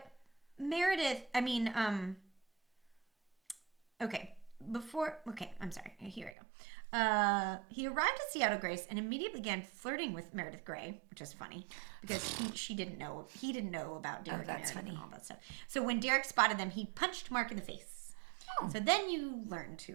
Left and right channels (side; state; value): left; drops out; at 6.3 s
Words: Meredith, okay. I'm sorry. Here I go. He arrived at Seattle Grace and immediately began flirting with Meredith Grey, which is funny because he didn't know about Derek and Meredith and all that stuff. So when Derek spotted them, he punched Mark in the face. Oh. So then you learned who